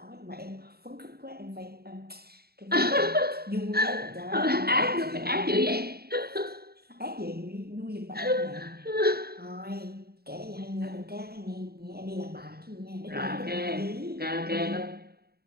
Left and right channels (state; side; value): late; left; 0.46 ms